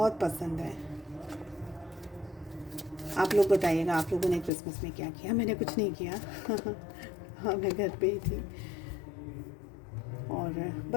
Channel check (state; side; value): drops out; right; at 4.5 s